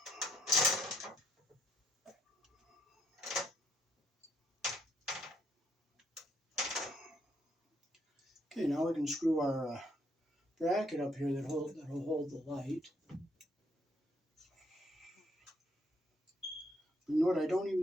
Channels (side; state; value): both; normal; correlation 0.72